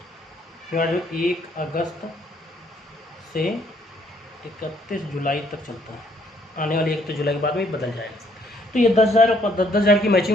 अगस्त से 31 जुलाई तक चलता है, आने वाली 31 जुलाई के बाद में बदल जाएगा। तो ये 10,000 की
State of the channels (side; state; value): both; normal; correlation 0.66